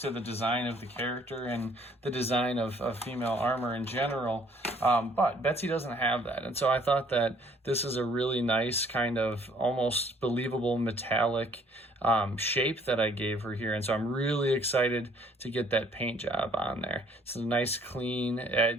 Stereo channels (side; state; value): both; normal; correlation 0.60